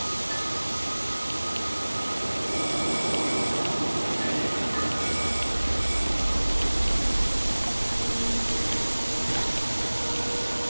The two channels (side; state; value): both; inverted; correlation -1.00